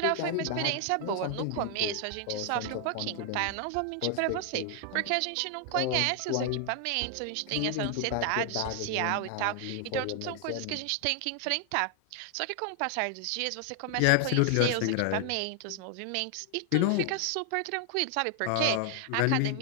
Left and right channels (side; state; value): both; different; correlation 0.00